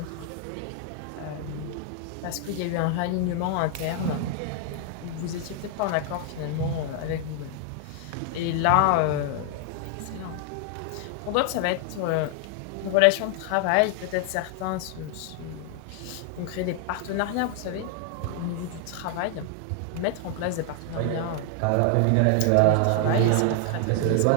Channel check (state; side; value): different; both; correlation 0.00